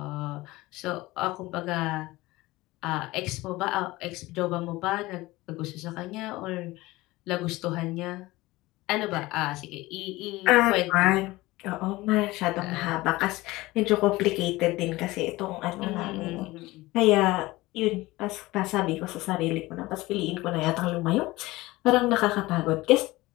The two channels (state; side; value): quieter; right; 19.7 dB